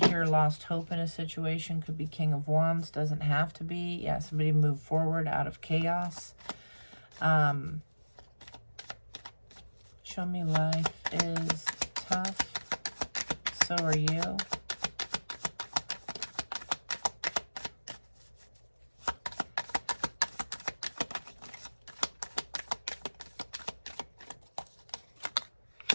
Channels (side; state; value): both; inverted; correlation -1.00